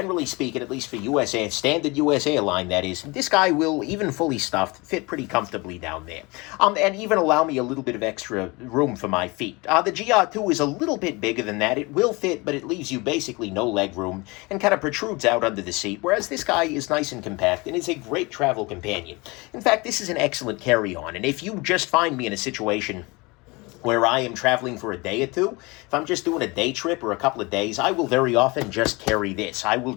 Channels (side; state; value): right; quieter; 25.4 dB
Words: speaking, at least for standard US airline, that is, this guy will, even fully stuffed, fit pretty comfortably down there. And even allow me a little bit of extra room for my feet. The GR2 is a little bit bigger than that. It will fit, but it leaves you basically no leg room and kind of protrudes out under the seat, whereas this guy is nice and compact and is a great travel companion. In fact, this is an excellent carry-on, and if you just find me in a situation where I am traveling for a day or two, if I'm just doing a day trip or a couple of days, I will very often just carry this. I will